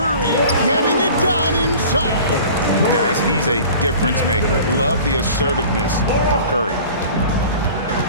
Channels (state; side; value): inverted; both; correlation -0.43